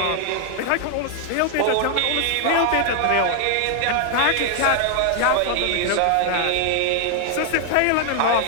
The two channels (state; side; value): different; both; correlation 0.00